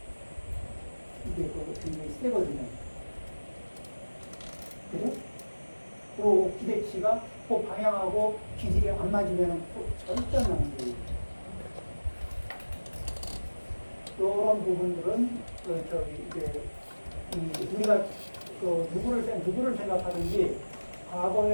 이게 굉장히 세거든요. 그래? 그 기대치가 그 방향하고 기질이 안 맞으면 절대 안 나는 거예요. 이런 부분들은 우리가 누구를 생각하든지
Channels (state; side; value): inverted; both; correlation -1.00